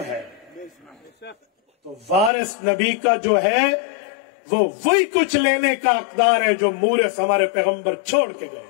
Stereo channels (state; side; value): drops out; right; at 2.3 s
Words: ہے، تو وارث نبی کا جو ہے وہ وہی کچھ لینے کا حقدار ہے جو مورث ہمارے پیغمبر چھوڑ کے گئے۔